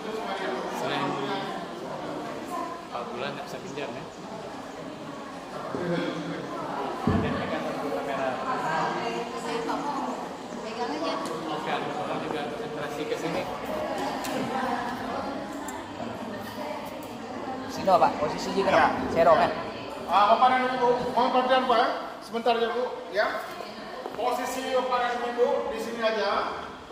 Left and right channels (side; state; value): both; identical; correlation 1.00